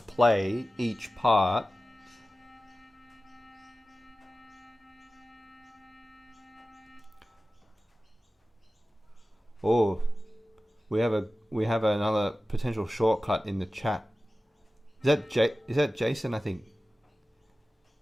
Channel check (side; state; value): both; normal; correlation 0.95